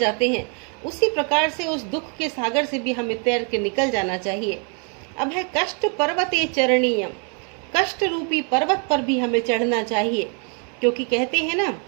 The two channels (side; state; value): left; quieter; 38.8 dB